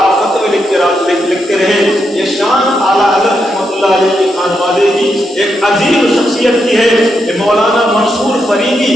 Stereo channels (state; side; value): normal; both; correlation 0.82